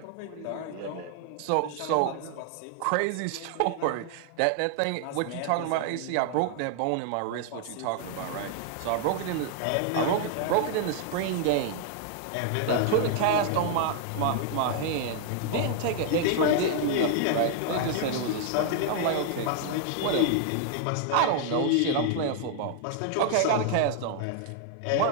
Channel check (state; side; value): different; both; correlation 0.00